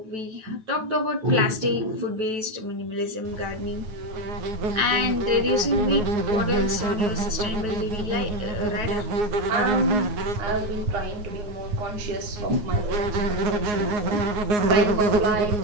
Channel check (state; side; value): late; left; 9.1 ms